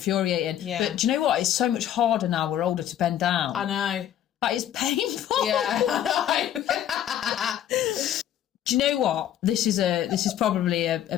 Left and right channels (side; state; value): right; quieter; 10.9 dB